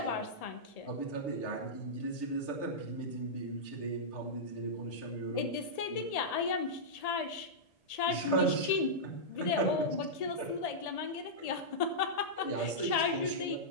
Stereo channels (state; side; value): late; right; 1.8 ms